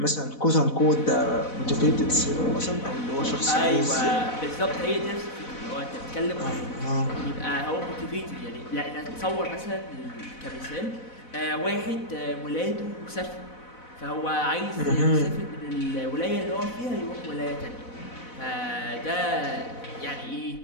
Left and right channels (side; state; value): right; late; 4.0 ms